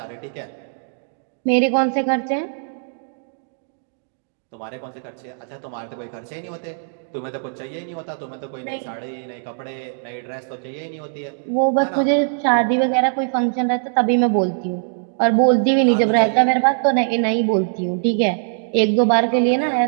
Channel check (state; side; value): silent; left; digital silence